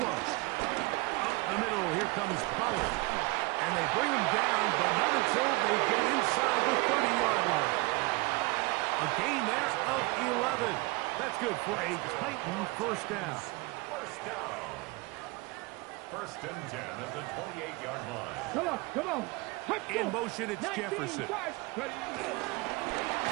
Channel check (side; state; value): left; quieter; 24.5 dB